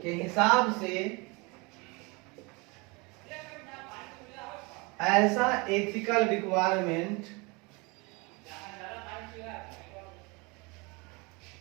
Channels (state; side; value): quieter; left; 27.6 dB